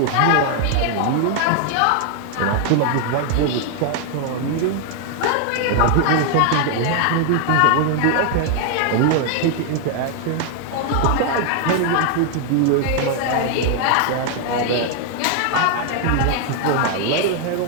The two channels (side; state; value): both; different; correlation 0.00